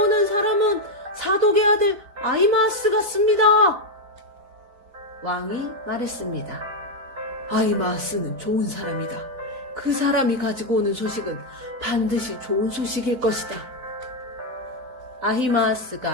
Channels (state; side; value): late; left; 4.0 ms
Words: 사람은 사독의 아들 아히마아스 같습니다. 왕이 말했습니다. 아히마아스는 좋은 사람이다. 그 사람이 가지고 오는 소식은 반드시 좋은 소식일 것이다.